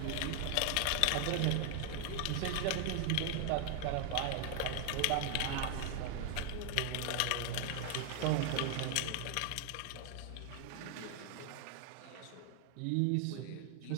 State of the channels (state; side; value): different; both; correlation 0.00